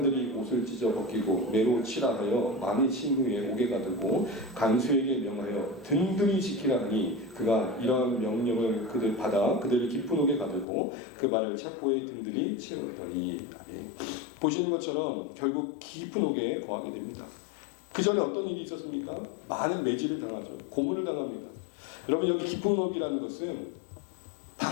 옷을 찢어 벗기고 매로 칠하여 많이 친 후에 옥에 가두고 간수에게 명하여 든든히 지키라 하니 그가 이러한 명령을 그들 받아 그들을 깊은 옥에 가두고 그 발을 차포에 든든히 채웠더니 보시는 것처럼 결국 깊은 옥에 거하게 됩니다. 그 전에 어떤 일이 있었습니까? 많은 매질을 당하죠. 고문을 당합니다. 여러분 여기 깊은 옥이라는 것은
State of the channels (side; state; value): right; drops out; at 10.7 s